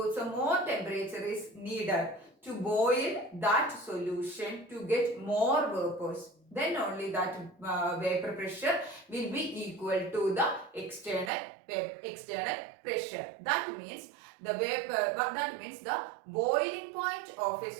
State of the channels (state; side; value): drops out; left; at 11.3 s